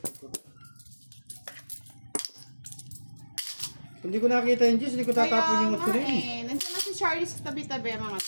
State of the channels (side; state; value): both; inverted; correlation -1.00